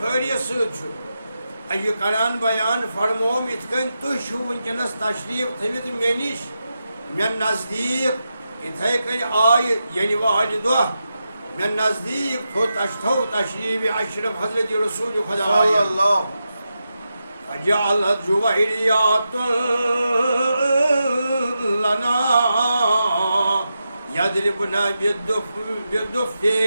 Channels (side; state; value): both; inverted; correlation -0.88